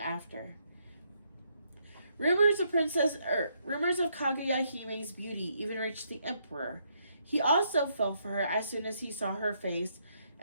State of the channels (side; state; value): both; inverted; correlation -0.74